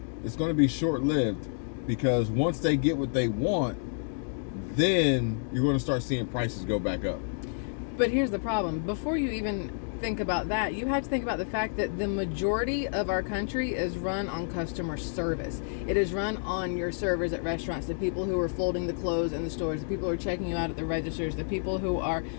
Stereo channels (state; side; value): silent; right; digital silence